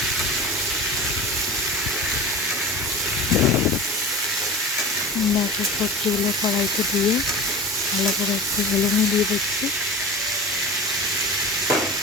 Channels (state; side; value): normal; both; correlation 0.33